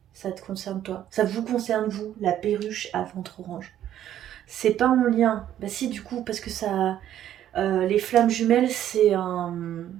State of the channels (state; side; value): quieter; left; 11.4 dB